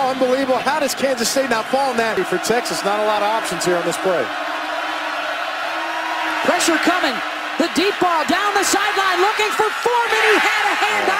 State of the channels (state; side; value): identical; both; correlation 1.00